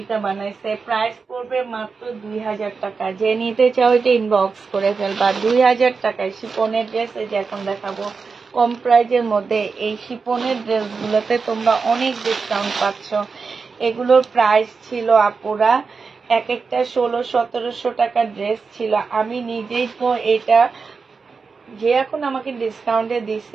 বানাইছে। প্রাইস পড়বে মাত্র 2000 টাকা। যে নিতে চাও এটা ইনবক্স করে ফেলবা। 2000 টাকায় শিপনের ড্রেস। এই যে এখন দেখাবো কম প্রাইজের মধ্যে এই শিপনের ড্রেসগুলোতে তোমরা অনেক ডিসকাউন্ট পাচ্ছ। এগুলোর প্রাইস ছিল আপুরা এক একটা 1600-1700 টাকার ড্রেস ছিল। আমি নিজেই তো এটা, যে এখন আমাকে ডিসকাউন্টে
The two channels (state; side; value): quieter; left; 4.9 dB